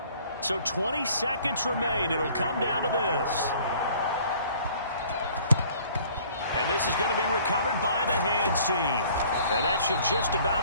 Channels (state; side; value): inverted; both; correlation -0.54